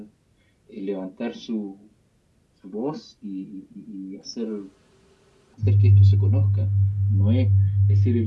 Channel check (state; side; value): identical; both; correlation 1.00